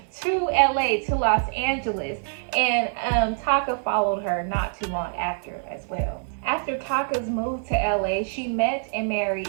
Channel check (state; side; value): silent; left; digital silence